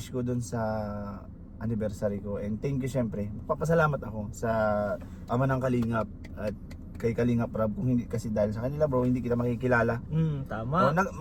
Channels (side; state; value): both; identical; correlation 1.00